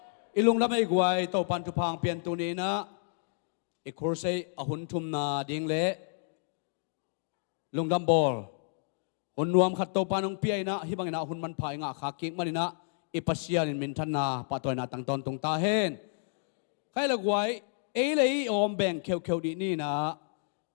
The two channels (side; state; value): right; silent; digital silence